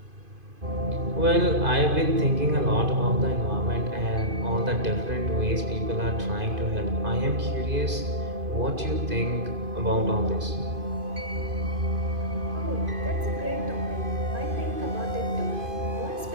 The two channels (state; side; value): late; left; 2.5 ms